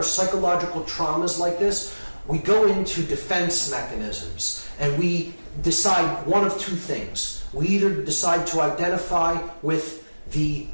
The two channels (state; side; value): inverted; both; correlation -1.00